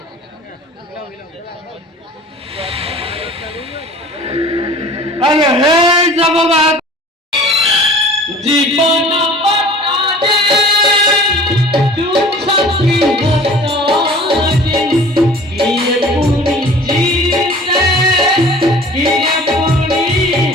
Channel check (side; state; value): both; normal; correlation 0.46